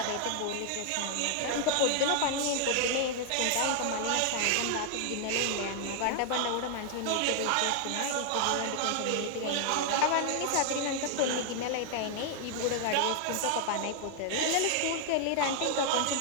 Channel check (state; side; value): different; both; correlation 0.00